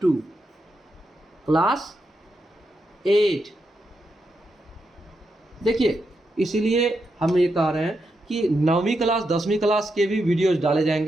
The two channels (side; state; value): both; normal; correlation 0.84